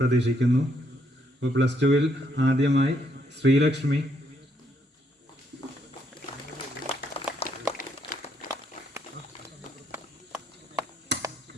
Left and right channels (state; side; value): normal; both; correlation 0.74